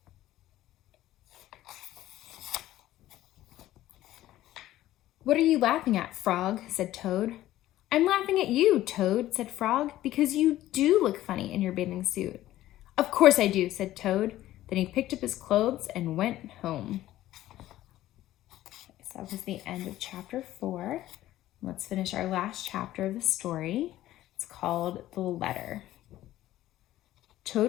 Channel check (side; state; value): right; quieter; 14.5 dB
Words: "What are you laughing at, Frog?" said Toad. "I'm laughing at you, Toad," said Frog, "because you do look funny in your bathing suit." "Of course I do," said Toad. Then he picked up his clothes and went home. So that was the end of chapter 4. Let's finish our last chapter of the story. It's called The Letter.